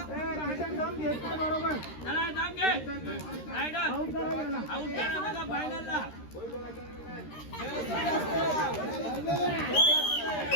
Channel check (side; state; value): right; late; 13 ms